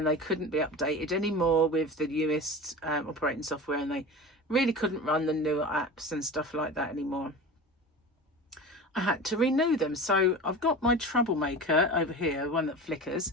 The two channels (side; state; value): both; normal; correlation 0.32